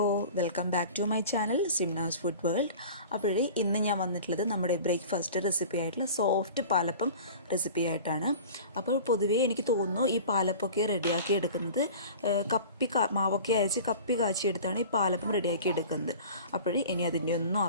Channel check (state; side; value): inverted; both; correlation -0.39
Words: welcome back to my channel Simnas food world. അപ്പോഴേ ഇന്ന് ഞാൻ വന്നിട്ടുള്ളത് നമ്മുടെ ബ്രേക്ക്ഫാസ്റ്റ് റെസിപ്പി ആയിട്ടുള്ള സോഫ്റ്റ് പാലപ്പം റെസിപ്പി ആയിട്ടാണ്. അപ്പോൾ പൊതുവേ എനിക്ക് തോന്നുന്നു ഈ പാലപ്പമൊക്കെ റെഡിയാക്കി എടുക്കുന്നത് മാവൊക്കെ അരച്ച് കപ്പി കാച്ചിയെടുത്താണ് ഈ പാലപ്പം റെഡിയാക്കി എടുക്കുന്നത്. അപ്പോഴേ ഇനി അതിൻ്റെ ഒന്നും